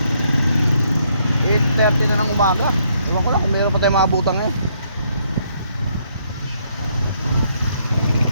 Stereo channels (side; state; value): both; inverted; correlation -0.71